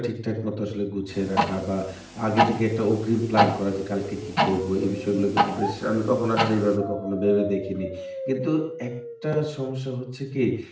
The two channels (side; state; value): both; identical; correlation 1.00